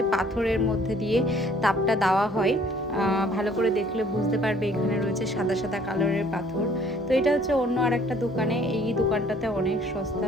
পাথরের মধ্যে দিয়ে তাপটা দেওয়া হয়। ভালো করে দেখলে বুঝতে পারবে এখানে রয়েছে সাদা সাদা কালারের পাথর। তো এটা হচ্ছে অন্য আর একটা দোকানে, এই দোকানটাতে অনেক সস্তা,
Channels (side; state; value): both; normal; correlation 0.58